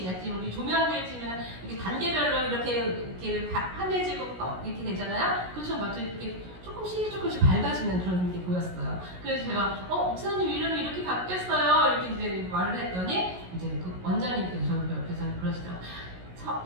약간 우리 조명들 치면 이렇게 단계별로 이렇게 환해지고 이렇게 되잖아요. 그렇죠, 맞죠? 이렇게 조금씩 밝아지는 그런 게 보였어요. 그래서 제가 목사님 이름이 이렇게 바뀌었어요. 이렇게 이제 말을 했더니 이제 그 원장님께서 저를 옆에서 그러시더라고요.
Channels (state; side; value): late; left; 16 ms